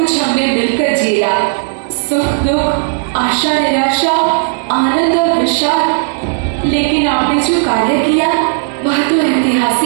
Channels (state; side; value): silent; left; digital silence